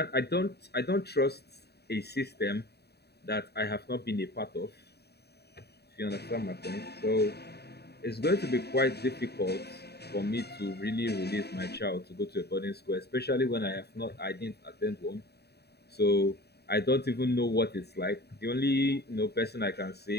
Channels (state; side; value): late; right; 0.48 ms